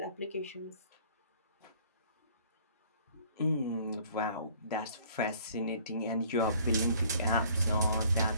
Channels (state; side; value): inverted; both; correlation -0.56